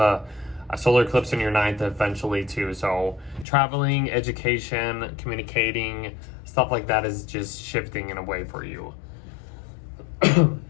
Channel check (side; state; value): right; drops out; at 3.5 s